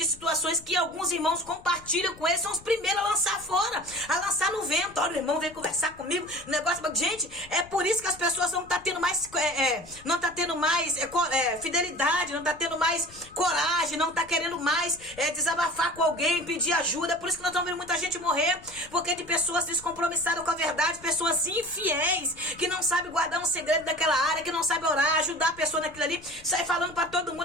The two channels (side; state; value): left; noise; rumble, 22 dB below the sound